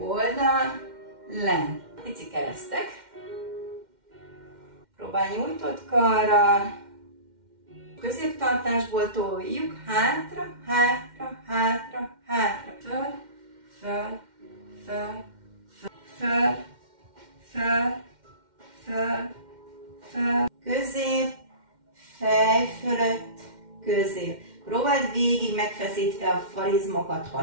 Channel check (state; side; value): late; left; 2.1 ms